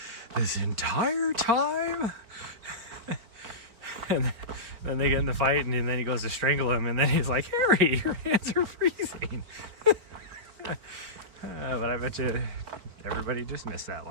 this entire time? And then they get in the fight, and then he goes to strangle him, and then he's like, Harry, your hands are freezing. But I bet you everybody just missed that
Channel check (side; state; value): left; late; 4.4 ms